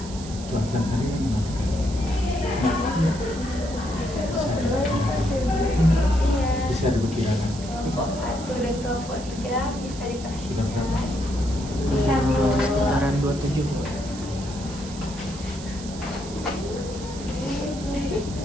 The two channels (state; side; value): noise; right; hiss, 14 dB below the sound